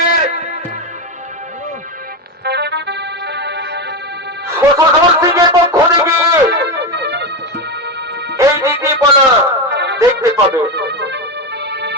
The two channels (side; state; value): both; normal; correlation 0.14